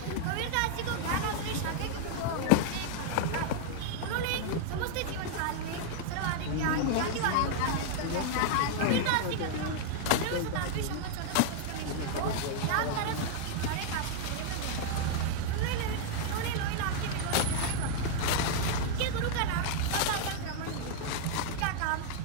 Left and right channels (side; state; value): both; different; correlation -0.01